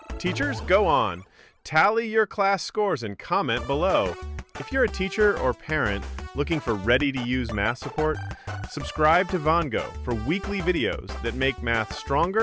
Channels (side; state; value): both; identical; correlation 1.00